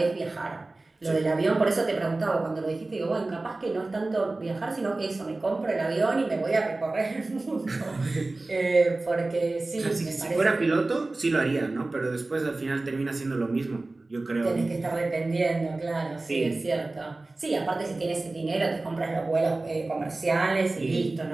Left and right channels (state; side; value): quieter; left; 3.1 dB